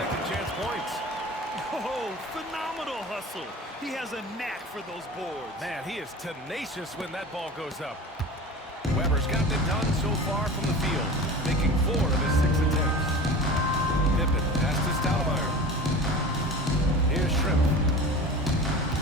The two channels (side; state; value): both; normal; correlation 0.35